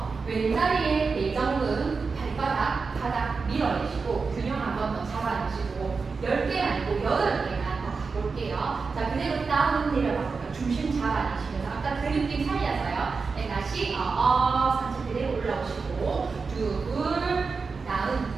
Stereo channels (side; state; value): left; quieter; 4.7 dB